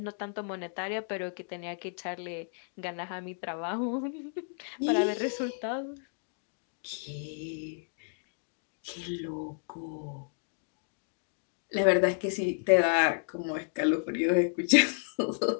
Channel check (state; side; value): silent; right; 56 dB below the other